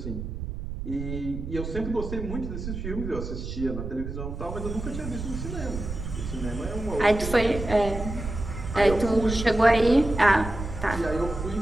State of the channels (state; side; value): noise; right; rumble, 7 dB below the sound